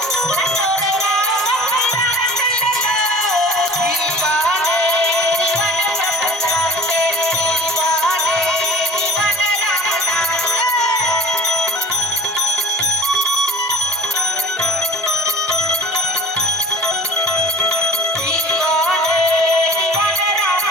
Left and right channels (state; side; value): normal; both; correlation 0.44